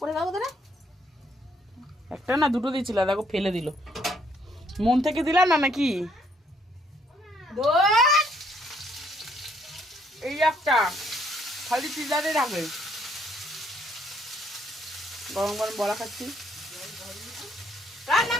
যাবো তো। একটা না দুটো দিয়েছিল, দেখো ফেলে দিল। মন থেকে দিলাম না নাকি? এই একটা খালি পিজারে রাখবে। গরম গরম বড়া খাচ্ছি। রান্না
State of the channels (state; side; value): normal; both; correlation 0.68